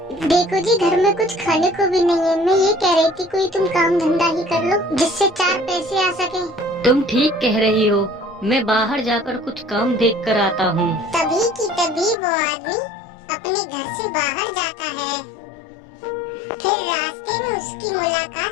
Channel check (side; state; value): right; drops out; at 12.2 s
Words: देखो जी, घर में कुछ खाने को भी नहीं है। मैं ये कह रही थी कोई तुम काम धंधा ही कर लो जिससे 4 पैसे आ सके। तुम ठीक कह रही हो, मैं बाहर जाकर कुछ काम देख कर आता हूँ। तभी की तभी वो आदमी अपने घर से बाहर जाता है। फिर रास्ते में उसकी